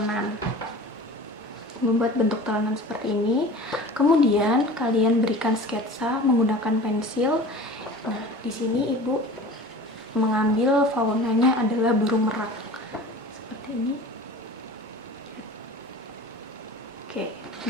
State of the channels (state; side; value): normal; both; correlation 0.39